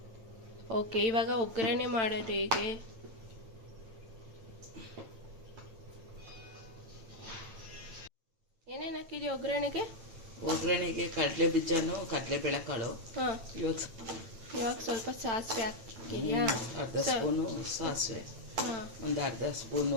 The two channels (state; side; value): late; left; 8.9 ms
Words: ಓಕೆ, ಇವಾಗ ಒಗ್ಗರಣೆ ಮಾಡೋದು ಹೇಗೆ? ಏನೇನು ಹಾಕಿದ್ಯಾ ಒಗ್ಗರಣೆಗೆ? ಒಗ್ಗರಣೆಗೆ ಕಡಲೆ ಬೀಜನೂ ಕಡಲೆ ಬೇಳೆಕಾಳು. ಹಾಂ, ಇವಾಗ ಸ್ವಲ್ಪ ಸಾಸಿವೆ ಹಾಕ್ತಿದ್ಯಾ? ಅರ್ಧ ಸ್ಪೂನು ಸಾಸಿವೆ, ಒಂದು ಅರ್ಧ